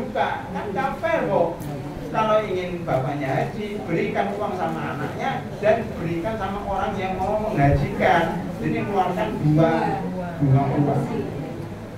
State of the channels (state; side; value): identical; both; correlation 1.00